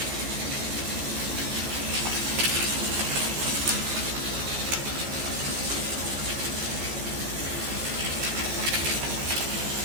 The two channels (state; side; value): late; left; 14 ms